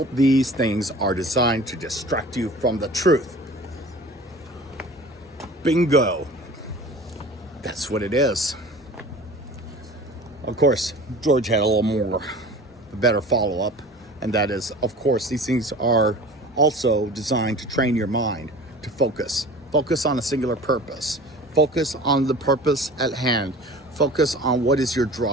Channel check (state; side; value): normal; both; correlation 0.41